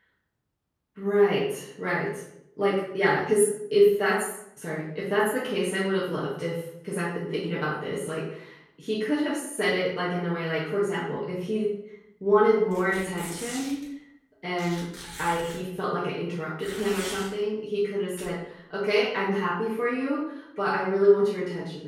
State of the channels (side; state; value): both; identical; correlation 1.00